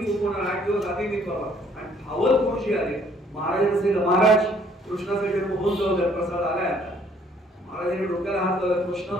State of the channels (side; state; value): both; normal; correlation 0.62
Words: 8 दिवस आधी नाही बाबा. आणि धावत गुरुजी आले. महाराजांना सांगितलं, महाराज कृष्णाचा जन्म होऊन जाऊ द्या, प्रसाद आलाय आता. महाराजांनी डोक्याला हात लावला,